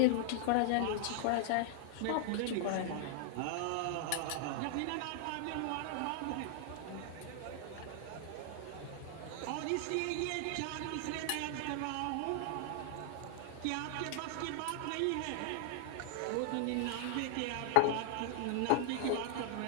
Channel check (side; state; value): both; different; correlation -0.01